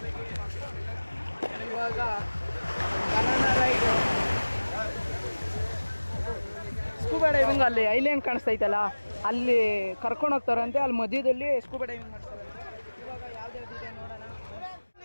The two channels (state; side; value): inverted; both; correlation -1.00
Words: ಇವಾಗ ಬನಾನಾ ರೈಡ್ ಸ್ಕೂಬಾ ಡೈವಿಂಗ್ ಅಲ್ಲಿ ಐಲ್ಯಾಂಡ್ ಕಾಣಿಸ್ತೈತಲ್ಲ ಅಲ್ಲಿ ಕರ್ಕೊಂಡು ಹೋಗ್ತಾರಂತೆ ಅಲ್ಲಿ ಮಧ್ಯದಲ್ಲಿ ಸ್ಕೂಬಾ ಡೈವಿಂಗ್ ಮಾಡ್ತಾರೆ ಇವಾಗ ಯಾವ್ದಾವ್ದಿದೆ ನೋಡೋಣ